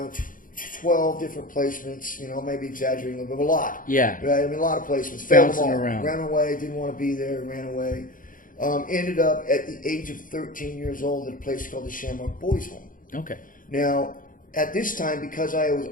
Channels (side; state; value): right; late; 0.39 ms